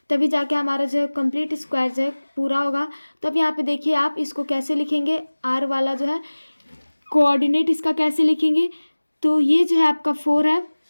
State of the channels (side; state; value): both; inverted; correlation -1.00